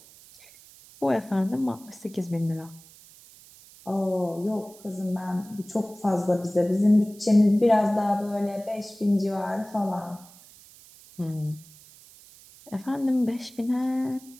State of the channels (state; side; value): noise; right; hiss, 23 dB below the sound